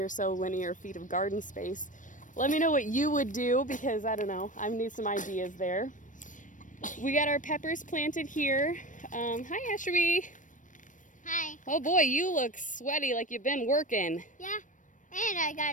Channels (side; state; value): right; late; 0.37 ms